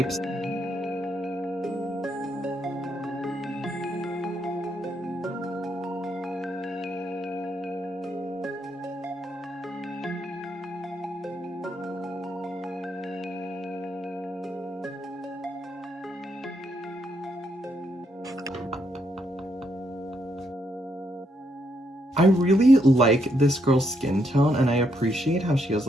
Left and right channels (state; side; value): normal; both; correlation 0.76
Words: I really like this girl's skin tone, and I appreciate how she has